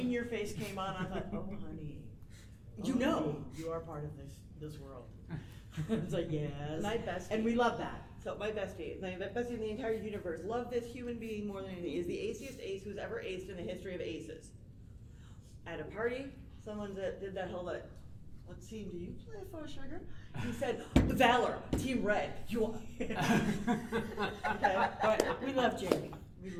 your face came on. I thought, oh honey, You know. honey, you are part of this world. It's like yes, My bestie. and we love that. So my bestie in the entire universe, love this human being more than anything, is the aciest ace who's ever aced in the history of aces. At a party, someone that did that whole what team do you play for, sugar? He said, Valor, Team Red. You are. Okay. But we love Jamie. We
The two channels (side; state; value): both; identical; correlation 1.00